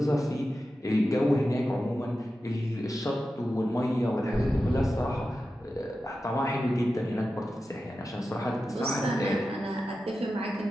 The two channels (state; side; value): normal; both; correlation 0.92